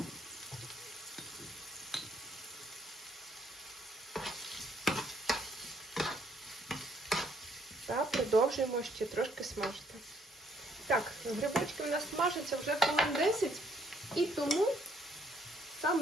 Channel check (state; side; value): normal; both; correlation 0.67